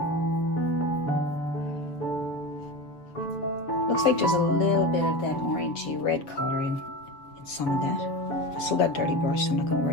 Looks like there's a little bit of that orangey red color in some of that. I still got a dirty brush, so I'm not going to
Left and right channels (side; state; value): right; late; 7.0 ms